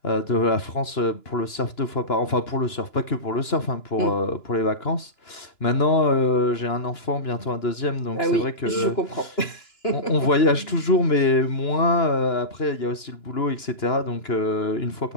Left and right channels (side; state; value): right; late; 2.9 ms